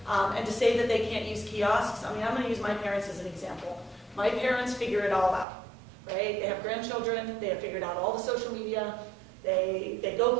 and to say that they can't use kiosks, I'm going to use my parents as an example. My parents figure it all out, right? They have grandchildren, they have figured out all the social media, they go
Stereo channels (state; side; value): drops out; left; at 5.5 s